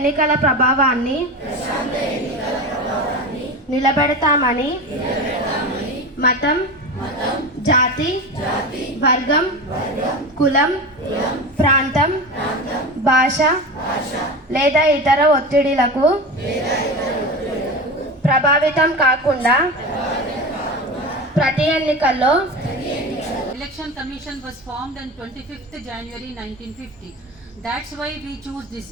ప్రభావాన్ని నిలబెడతామని మతం, జాతి, వర్గం, కులం, ప్రాంతం, భాష లేదా ఇతర ఒత్తిడిలకు ప్రభావితం కాకుండా ప్రతి ఎన్నికల్లో Election Commission was formed on 25th January 1950. That's why we choose this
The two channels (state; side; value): normal; both; correlation 0.27